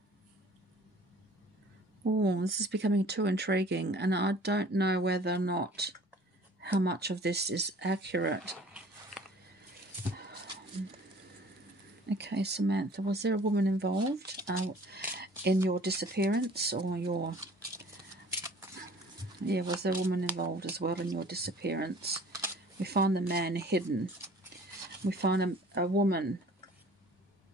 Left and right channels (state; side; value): normal; both; correlation 0.50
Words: Oh, this is becoming too intriguing, and I don't know whether or not how much of this is accurate. Okay, Samantha, was there a woman involved in your disappearance, or your... Yeah, was there a woman involved as well in your disappearance? We find the man hidden. We find a woman